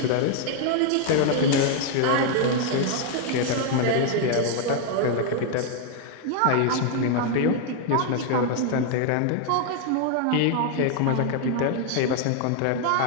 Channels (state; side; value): different; both; correlation 0.00